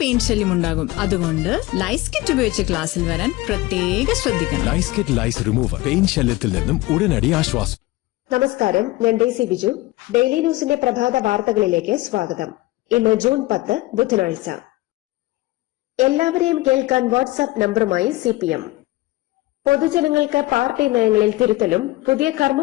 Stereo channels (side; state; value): right; quieter; 19.2 dB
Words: ശല്യം ഉണ്ടാകും. അതുകൊണ്ട് ലൈസ് കിറ്റ് ഉപയോഗിച്ച് ക്ലാസ്സിൽ വരാൻ പ്രത്യേക ശ്രദ്ധിക്കണം. ലൈസ് കിറ്റ് ലൈസ് റിമൂവർ പെയിൻ ശല്യത്തിൽ നിന്നും ഉടനടി ആശ്വാസം. നമസ്കാരം, ഞാൻ ഡെയ്സി ബിജു. ഡെയിലി ന്യൂസിന്റെ പ്രഭാത വാർത്തകളിലേക്ക് സ്വാഗതം. ഇന്ന് ജൂൺ 10 ബുധനാഴ്ച. എല്ലാവരെയും കേൾക്കാൻ വാട്സ്ആപ്പ് നമ്പറുമായി CPM. പൊതുജനങ്ങൾക്ക് പാർട്ടി നയങ്ങളിൽ തിരുത്തലും പുതിയ